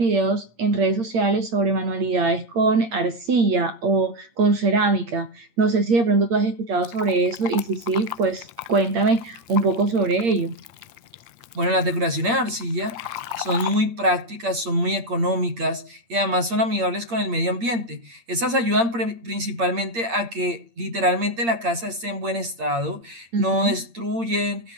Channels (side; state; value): left; late; 8.7 ms